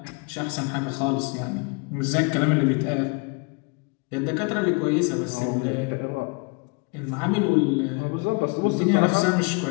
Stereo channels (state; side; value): quieter; right; 31.2 dB